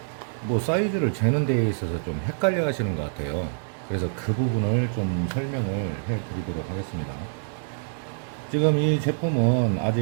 뭐 사이즈를 재는 데에 있어서 좀 헷갈려 하시는 것 같아요. 그래서 그 부분을 좀 설명을 해 드리도록 하겠습니다. 지금 이 제품은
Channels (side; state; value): left; silent; digital silence